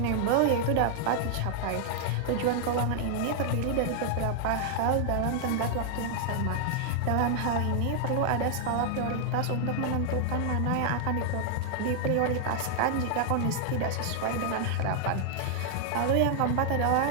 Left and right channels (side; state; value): both; different; correlation 0.00